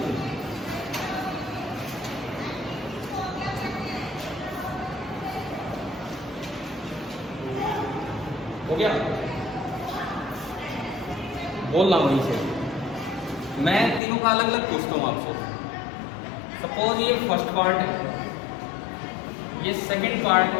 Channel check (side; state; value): right; drops out; at 14.0 s